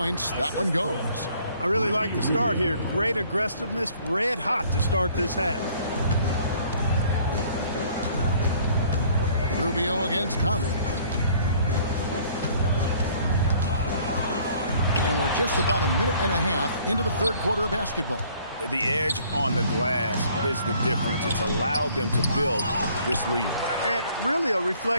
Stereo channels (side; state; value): both; inverted; correlation -0.58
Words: That one goes. I really like the start here. Great aggressiveness, red hot to start this half. Rubio against Conley. And we're just about a minute and a half into the third quarter of basketball. The edge on the glass is the difference. It's allowed them to build this lead. And really a